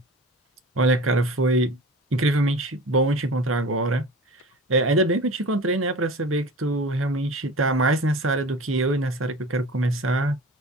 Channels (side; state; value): both; normal; correlation 0.37